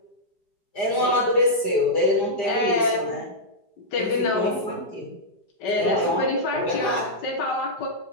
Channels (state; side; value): late; right; 4.9 ms